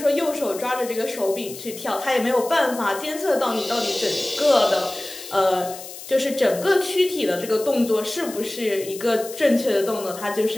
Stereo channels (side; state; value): left; noise; hiss, 13 dB below the sound